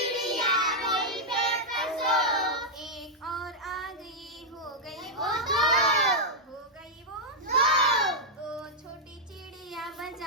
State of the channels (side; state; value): both; normal; correlation -0.04